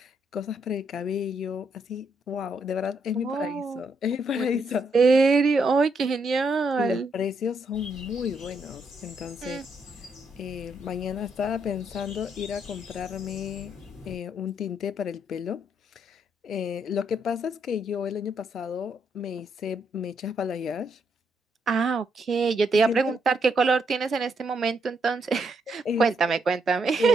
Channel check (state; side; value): normal; both; correlation 0.76